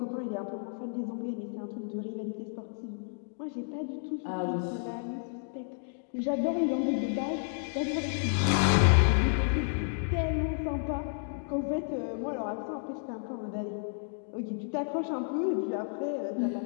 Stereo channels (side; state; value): right; silent; digital silence